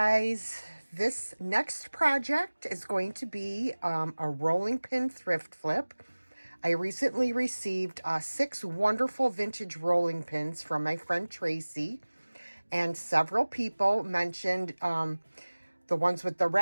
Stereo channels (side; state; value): both; inverted; correlation -1.00